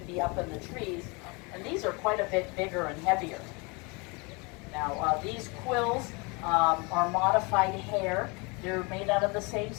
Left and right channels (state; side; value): quieter; right; 29.1 dB